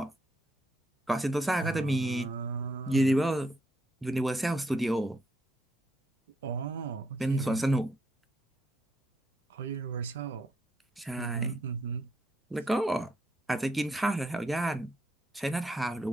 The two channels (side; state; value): both; normal; correlation 0.77